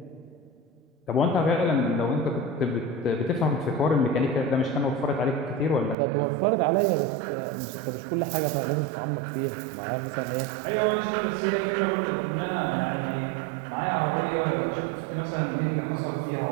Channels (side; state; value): left; drops out; at 6.0 s